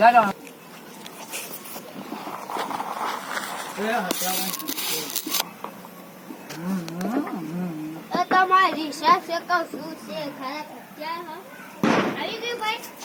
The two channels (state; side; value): identical; both; correlation 1.00